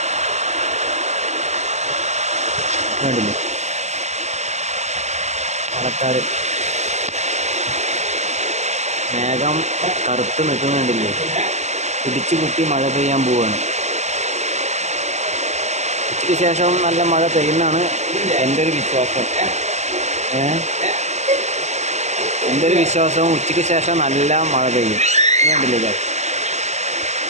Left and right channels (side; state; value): left; late; 0.33 ms